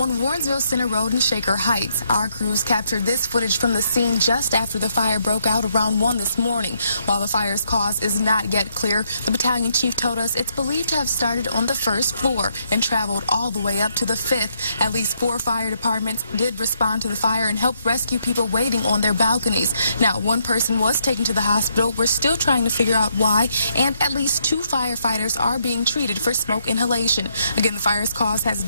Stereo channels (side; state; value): both; inverted; correlation -0.75